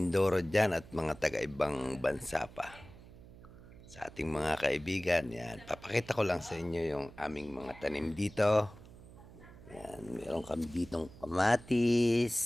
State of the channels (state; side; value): noise; right; hum, 19 dB below the sound